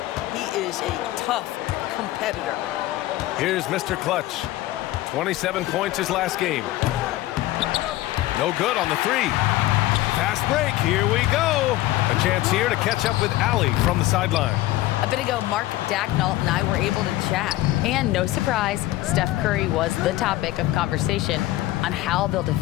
he is a tough competitor. Here's Mr. Clutch. 27 points his last game. No good on the 3. Fast break, here we go. A chance here to catch up with Allie from the sideline. A bit ago, Mark Dacknault and I were able to chat. And no surprise, Steph Curry was the topic of conversation on how they'll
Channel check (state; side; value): quieter; right; 16.3 dB